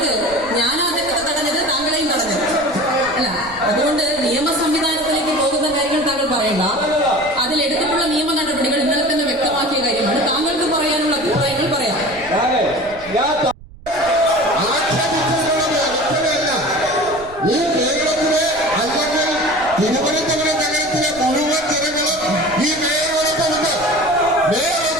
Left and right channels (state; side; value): noise; right; rumble, 20 dB below the sound